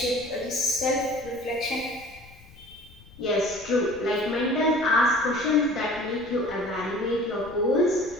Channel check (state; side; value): noise; left; rumble, 22 dB below the sound